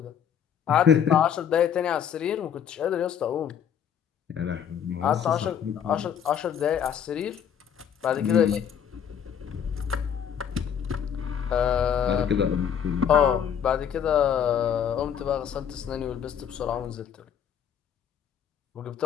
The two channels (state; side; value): quieter; right; 8.4 dB